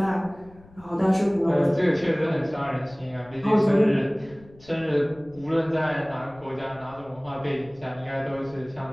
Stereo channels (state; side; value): noise; left; rumble, 24 dB below the sound